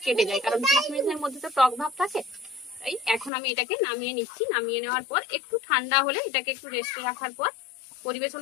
কেটে যায়, কারণ কিশমিশের মধ্যে তো টক ভাব থাকে। তাই এখন আমি এটাকে নামিয়ে নিচ্ছি। নামিয়ে নেওয়ার পর একটু ঠান্ডা হলে এটাকে একটু রেস্টে রাখার পর পরিবেশন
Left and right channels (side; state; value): right; drops out; at 3.3 s